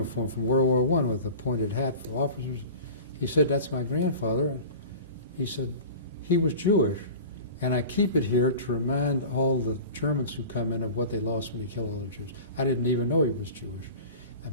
from World War I with a pointed hat for officers. He said, "That's my grandfather." And he said, "He was Jewish, and I keep it here to remind all the Germans who come in of what they lost when they killed all the Jews." I didn't even know he was Jewish. I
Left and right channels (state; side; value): inverted; both; correlation -0.36